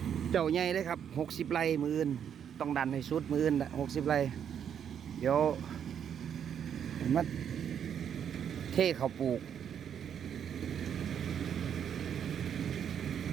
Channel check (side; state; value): left; quieter; 8.5 dB